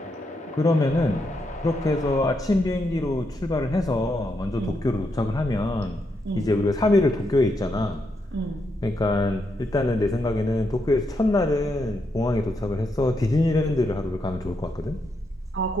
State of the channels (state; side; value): normal; both; correlation 0.81